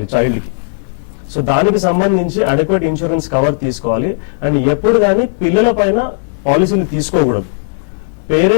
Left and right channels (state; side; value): silent; right; digital silence